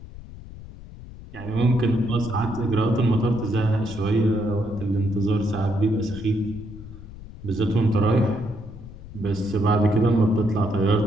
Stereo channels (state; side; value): noise; left; rumble, 15 dB below the sound